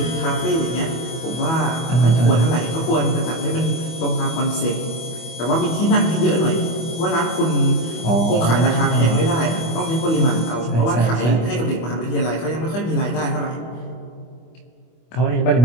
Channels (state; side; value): late; right; 25 ms